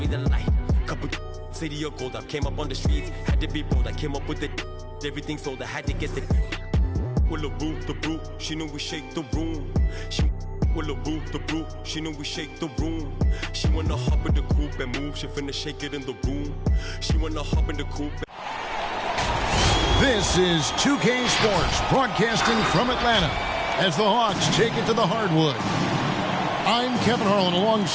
light. Couple city of gold, I came up on the streets, had to be bold. I came up with the everything sold, I had to get the with the brew, she knew we shake the room. She with the brew, she knew we shake the room. She wanna hop in the coupe and move, she finna shake it in the room. She wanna hop in the coupe. This is 2K Sports, broadcasting from Atlanta as the Hawks take it to the hardwood. I'm Kevin Harlan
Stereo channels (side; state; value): both; identical; correlation 1.00